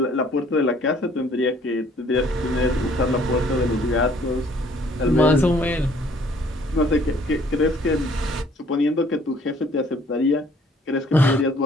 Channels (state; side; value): normal; both; correlation 0.59